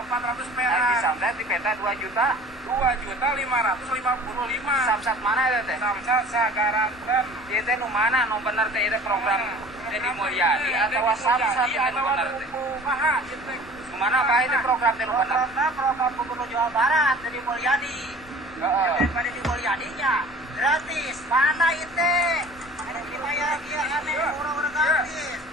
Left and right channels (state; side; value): normal; both; correlation 0.46